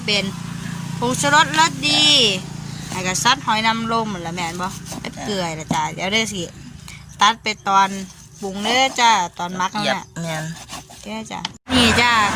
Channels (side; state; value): both; identical; correlation 1.00